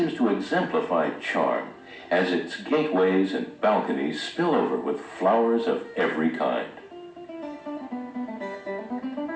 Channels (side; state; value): both; identical; correlation 1.00